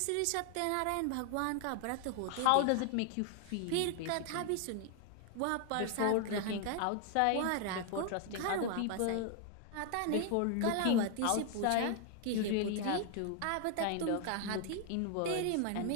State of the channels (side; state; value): both; different; correlation 0.00